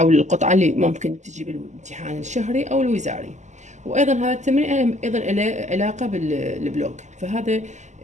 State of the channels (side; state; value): left; late; 0.34 ms